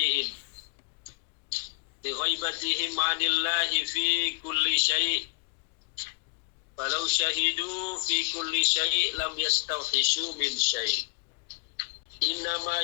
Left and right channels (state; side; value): quieter; right; 33.3 dB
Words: bi ghaibatihim 'anillahi fi kulli syai' falau syahidu fi kulli syai' lam yastawhishu min syai'. Innama